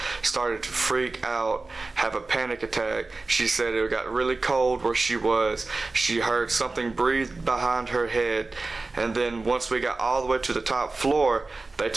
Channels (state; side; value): quieter; left; 3.5 dB